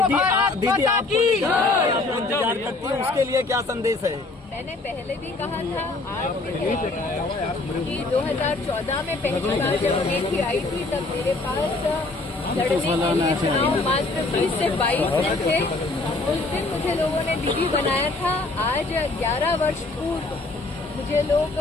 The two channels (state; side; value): quieter; right; 3.3 dB